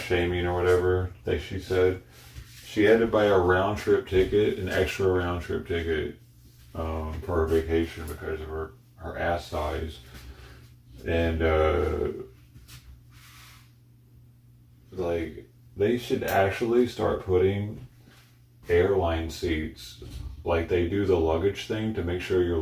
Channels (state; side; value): identical; both; correlation 1.00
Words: shaming or whatever, like she said. She had to buy a round trip ticket, an extra round trip ticket for her vacation because of her ass size. And like they should actually start putting airline seats like they do the luggage thing to make sure your